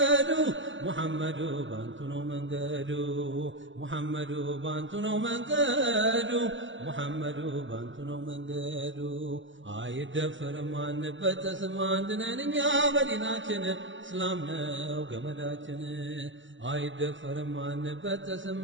ሙሐመዱ ባንቱ ነው መንገዱ ሙሐመዱ ባንቱ ነው መንገዱ ሙሐመዱ ባንቱ ነው መንገዱ አይደፈርም አንበጠስም አንድ ነን እኛ በዲናችን እስላም ነው ገመዳችን አይደፈርም አንበጠስም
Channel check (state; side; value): late; left; 0.55 ms